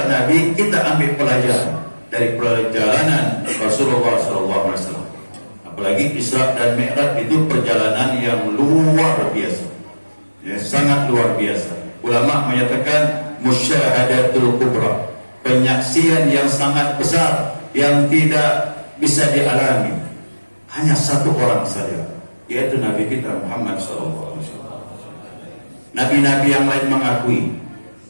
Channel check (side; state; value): both; inverted; correlation -1.00